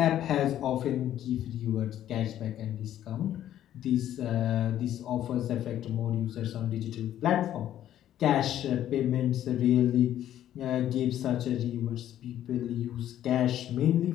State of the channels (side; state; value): right; quieter; 11.7 dB